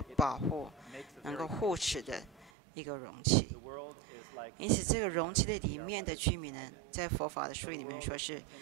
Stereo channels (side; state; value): left; drops out; at 2.5 s